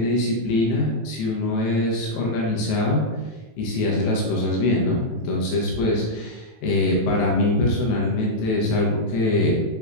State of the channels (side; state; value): right; late; 18 ms